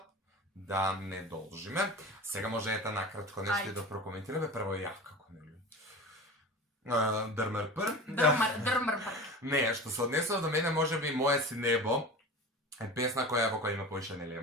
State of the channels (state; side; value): normal; both; correlation 0.33